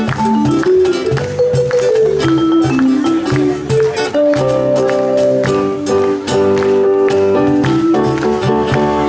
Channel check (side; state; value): both; identical; correlation 1.00